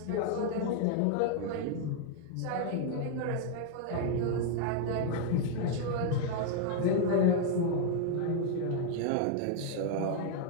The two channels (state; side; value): different; both; correlation 0.00